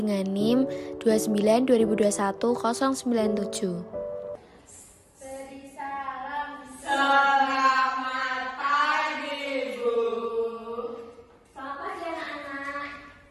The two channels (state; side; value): identical; both; correlation 1.00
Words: NIM 292021-097. Beri salam. Selamat pagi, Bu. Selamat pagi anak-anak.